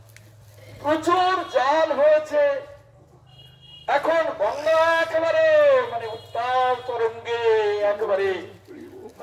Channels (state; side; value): identical; both; correlation 1.00